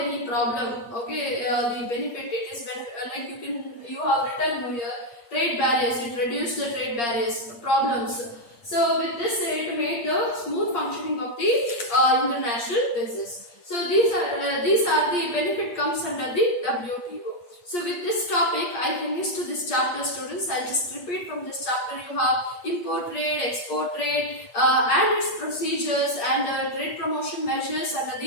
problem. Okay, the benefit it is when like you have written here trade barriers. It reduced the trade barriers problems. So with this, it made the smooth functioning of the international business. So these are the benefit comes under the WTO. So with this topic, I finished this chapter, students. I'll just repeat from this chapter. You have import trade, export trade, and its procedures, and trade promotion measures under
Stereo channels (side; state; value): right; late; 8.5 ms